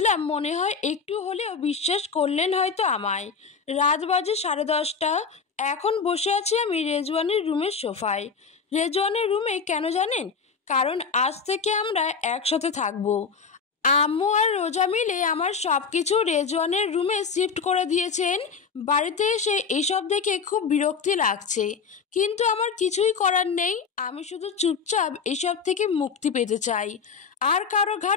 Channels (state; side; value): quieter; right; 5.5 dB